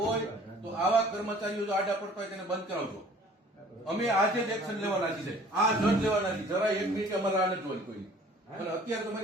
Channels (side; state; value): both; normal; correlation 0.51